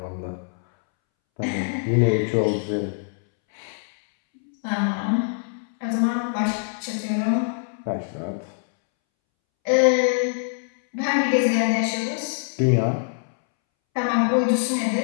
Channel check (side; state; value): right; silent; 63 dB below the other